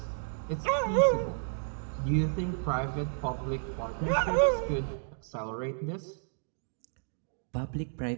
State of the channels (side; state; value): left; silent; digital silence